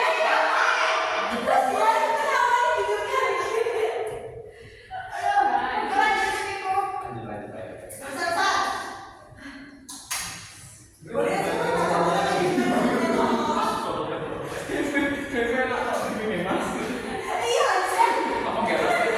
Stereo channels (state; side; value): identical; both; correlation 1.00